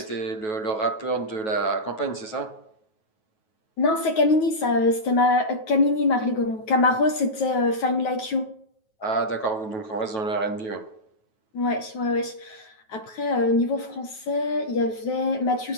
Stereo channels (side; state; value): right; late; 9.3 ms